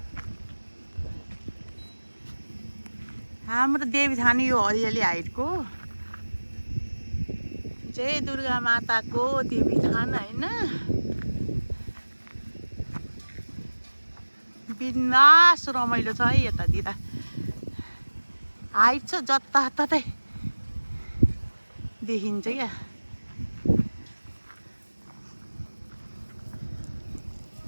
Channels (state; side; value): inverted; both; correlation -1.00